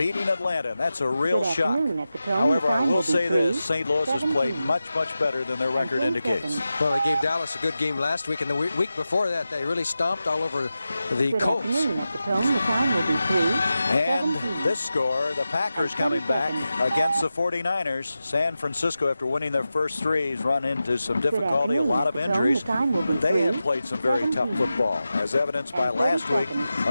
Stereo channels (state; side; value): inverted; both; correlation -0.93